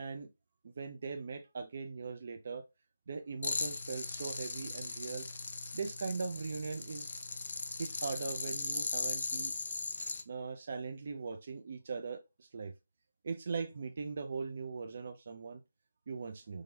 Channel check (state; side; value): inverted; both; correlation -0.84